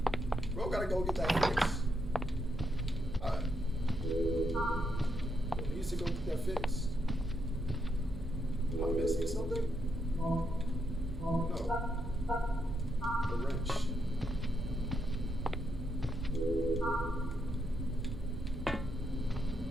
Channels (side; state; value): right; noise; hum, 14 dB below the sound